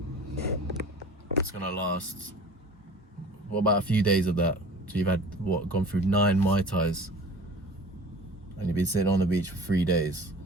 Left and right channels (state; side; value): normal; both; correlation 0.42